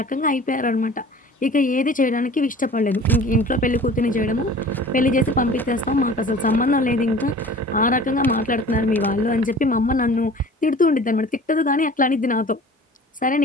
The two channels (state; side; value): normal; both; correlation 0.44